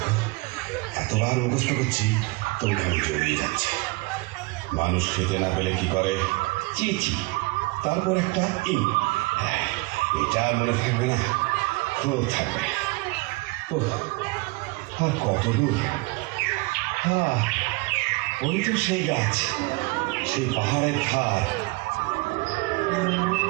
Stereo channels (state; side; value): quieter; left; 25.0 dB